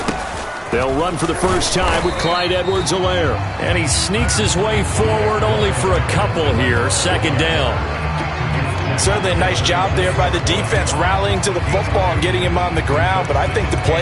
They'll run for the first time with Clyde Edwards-Helaire. And he sneaks his way forward only for a couple here. Second down. Certainly a nice job there by the defense rallying to the football and getting him on the ground. But I think the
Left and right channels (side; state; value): both; identical; correlation 1.00